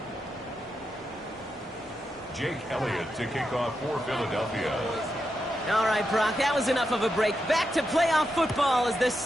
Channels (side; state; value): both; normal; correlation 0.86